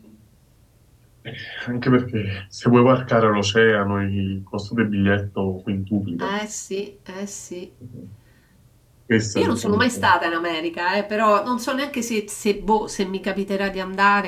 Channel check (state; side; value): identical; both; correlation 1.00